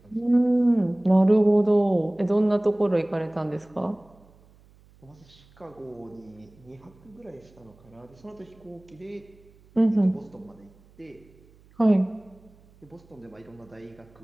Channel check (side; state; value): right; noise; hum, 28 dB below the sound